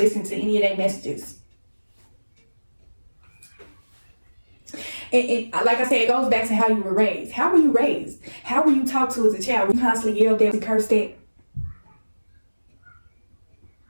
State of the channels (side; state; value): both; inverted; correlation -1.00